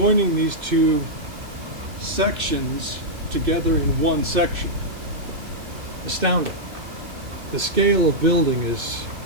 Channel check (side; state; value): left; late; 2.6 ms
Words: these two sections together in one section. Astounding. The scale of building is